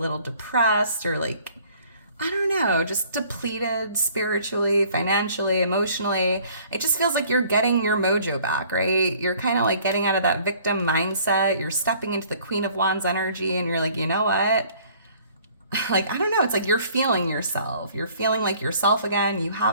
depressed or like, I don't know, just depleted spiritually, financially, emotionally, it just feels like you're getting your mojo back, right? You're kind of like getting out of that victim mindset. You're stepping into the Queen of Wands energy and you're like, you know what? Like, I don't know, it's like you're feeling yourself. You're feeling like yourself again. You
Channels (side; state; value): both; inverted; correlation -0.56